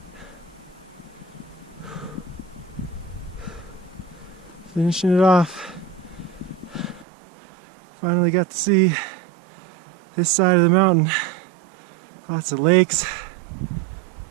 Finishing it off. Finally got to see this side of the mountain. Lots of lakes.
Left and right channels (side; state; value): left; drops out; at 7.1 s